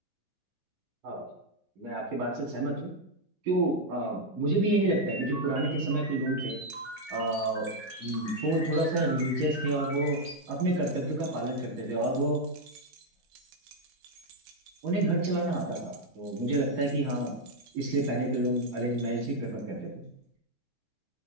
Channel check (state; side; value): normal; both; correlation 0.00